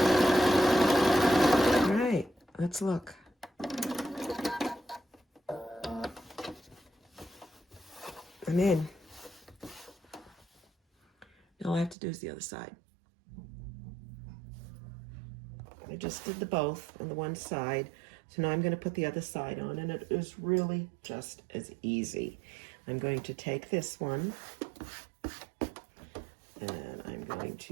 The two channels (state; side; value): drops out; left; at 12.0 s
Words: All right, let's look. I'm in. Now all I have to do is the other side. I just did the both on the one side. So now I'm going to put the other side on, and it is really just as easy. I'm going to take this one, and I'm going